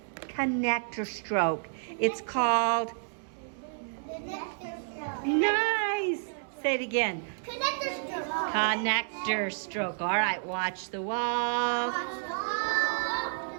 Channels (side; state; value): left; silent; digital silence